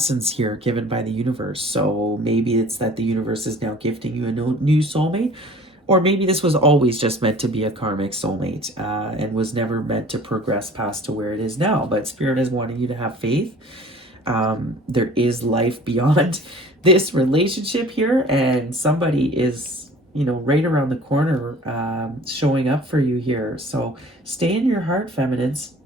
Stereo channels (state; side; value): normal; both; correlation 0.48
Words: here given by the universe. So maybe it's that the universe is now gifting you a new soulmate, or maybe this was always just meant to be a karmic soulmate and was never meant to progress past to where it is now. But Spirit is wanting you to have faith. There is life beyond this relationship here, and somebody is, you know, right around the corner showing up for you here. So stay in your heart, feminines.